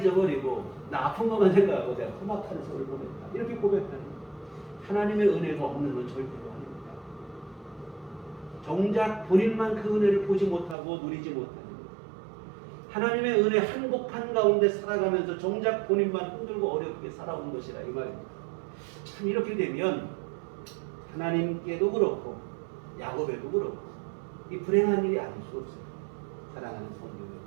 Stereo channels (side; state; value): left; drops out; at 10.8 s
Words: 나 아픈 것만 생각하고 내가 험악한 세월을 보냈다. 이렇게 고백하는 거예요. 하나님의 은혜가 없는 건 절대로 아닙니다. 정작 본인만 그 은혜를 보지 못하고 누리지 못하는 거예요. 하나님의 은혜 한복판 가운데 살아가면서 정작 본인만 힘들고 어렵게 살아온 것이라 이 말입니다. 참 이렇게 되면 하나님께도 그렇고 야곱에도 그렇고 이 불행한 일이 아닐 수 없어요. 사랑하는 성도